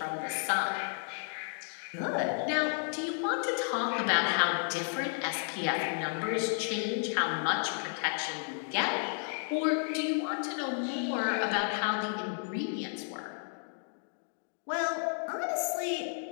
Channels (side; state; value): right; silent; 56 dB below the other